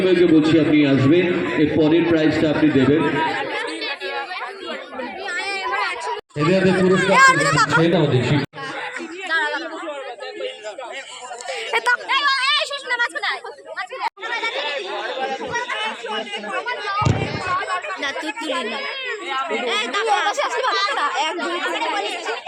বলছি আপনি আসবেন, এর পরের প্রাইজটা আপনি দেবেন। এদের পুরস্কার দেখি।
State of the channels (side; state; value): both; identical; correlation 1.00